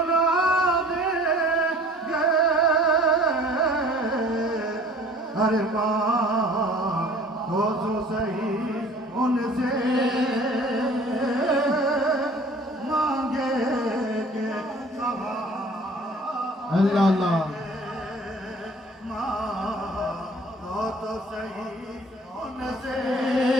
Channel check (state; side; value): normal; both; correlation 0.50